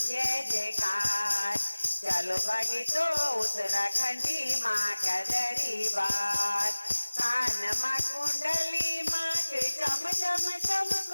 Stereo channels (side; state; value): both; inverted; correlation -1.00